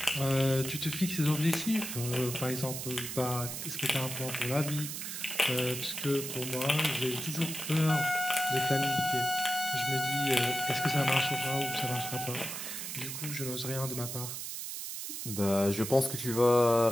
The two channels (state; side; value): noise; right; hiss, 6 dB below the sound